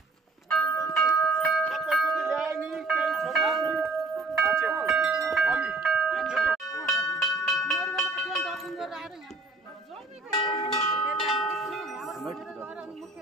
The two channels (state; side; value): quieter; left; 3.4 dB